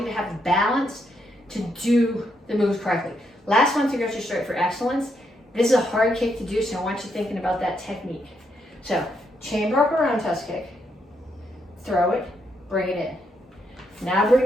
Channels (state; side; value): normal; both; correlation 0.78